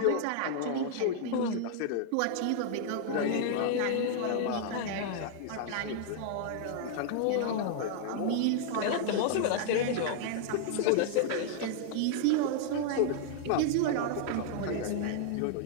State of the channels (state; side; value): different; both; correlation -0.01